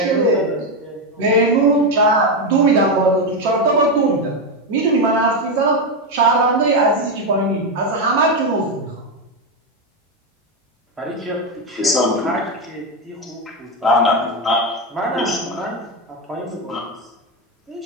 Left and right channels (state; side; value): normal; both; correlation 0.08